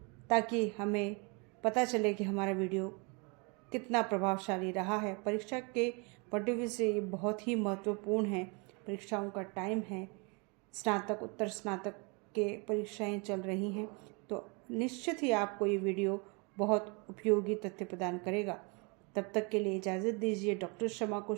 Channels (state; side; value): quieter; left; 31.6 dB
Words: ताकि हमें पता चले कि हमारा वीडियो कितना प्रभावशाली रहा है। परीक्षा के पॉइंट ऑफ व्यू से ये बहुत ही महत्वपूर्ण है। परीक्षाओं का टाइम है, स्नातक उत्तर स्नातक के परीक्षाएं चल रही हैं, तो निश्चित ही आपको ये वीडियो बहुत उपयोगी तथ्य प्रदान करेगा। तब तक के लिए इजाज़त दीजिए डॉक्टर शमा को।